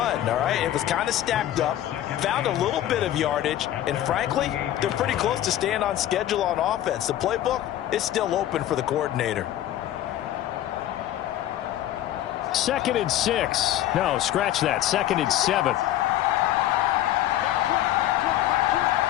all right? It was kind of stacked up, found a little bit of yardage, and frankly, they're pretty close to staying on schedule on offense. The playbook is still open for the coordinator. 2nd and 6. No, scratch that. 2nd and 7.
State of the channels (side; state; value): right; quieter; 12.8 dB